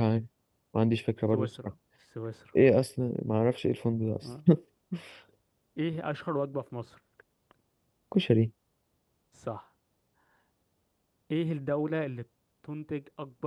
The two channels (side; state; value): both; identical; correlation 1.00